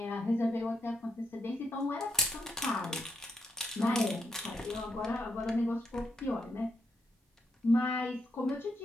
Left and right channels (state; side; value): normal; both; correlation 0.80